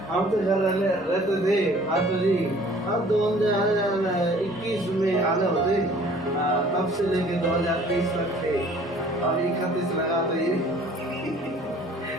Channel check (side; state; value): both; normal; correlation 0.53